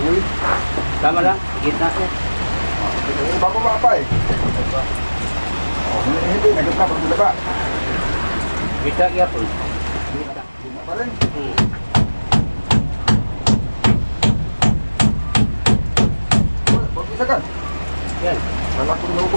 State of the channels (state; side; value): inverted; both; correlation -1.00